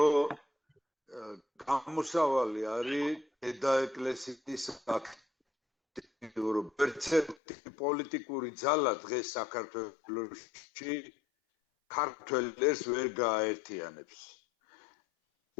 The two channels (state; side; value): drops out; right; at 7.4 s